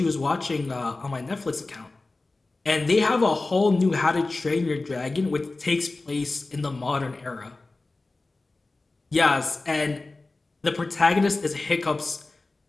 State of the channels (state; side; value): quieter; right; 3.3 dB